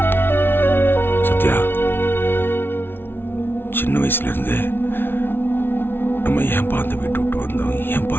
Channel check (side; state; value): right; late; 0.11 ms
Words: சத்யா, சின்ன வயசுல இருந்து நம்ம ஏன்பா அந்த வீட்டு விட்டு வந்தோம், ஏன்பா